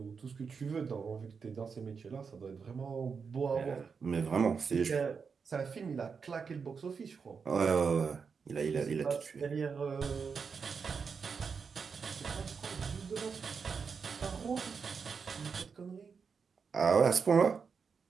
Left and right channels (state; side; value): quieter; left; 5.7 dB